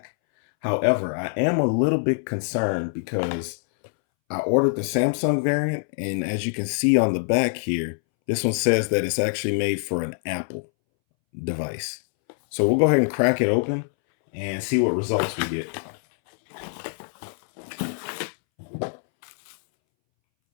However, I am a little bit concerned because I ordered the Samsung variant, and as you can see on the back here, this one says that it's actually made for an Apple device. So we'll go ahead and crack it open and see what results we get.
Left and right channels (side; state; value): right; silent; 62 dB below the other